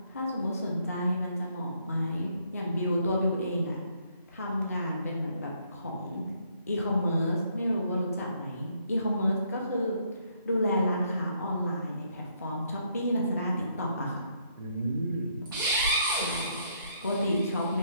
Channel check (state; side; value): inverted; both; correlation -0.70